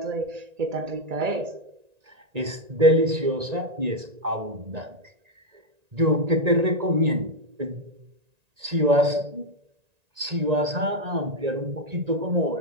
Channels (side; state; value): left; late; 1.9 ms